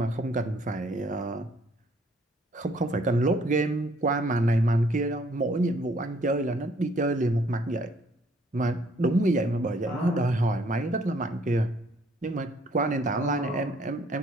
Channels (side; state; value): both; normal; correlation 0.63